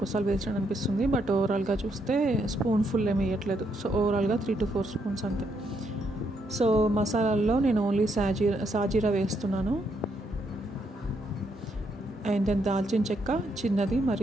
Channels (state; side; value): normal; both; correlation 0.76